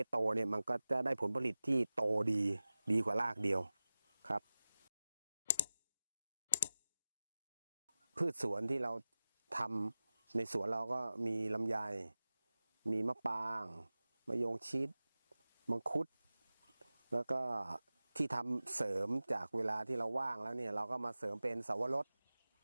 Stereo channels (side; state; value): both; inverted; correlation -0.96